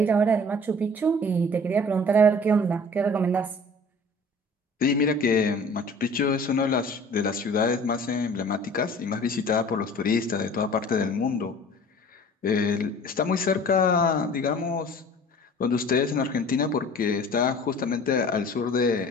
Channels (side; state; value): both; normal; correlation 0.46